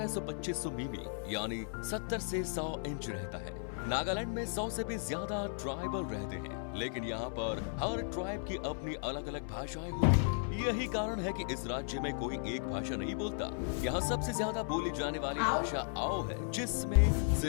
मिमी यानी 70 से 100 इंच रहता है। नागालैंड में 100 से भी ज्यादा ट्राइबल रहते हैं, लेकिन यहाँ पर हर ट्राइब की अपनी अलग अलग भाषाएं होती हैं। यही कारण है कि इस राज्य में कोई एक भाषा नहीं बोलता। यहाँ सबसे ज्यादा बोली जाने वाली भाषा आओ है, जिसमें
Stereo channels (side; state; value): right; silent; 54 dB below the other